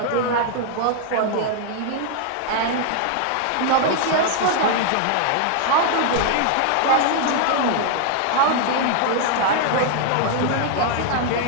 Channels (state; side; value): different; both; correlation 0.00